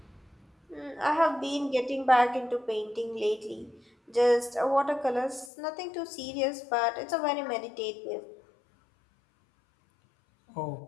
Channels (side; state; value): right; drops out; at 5.5 s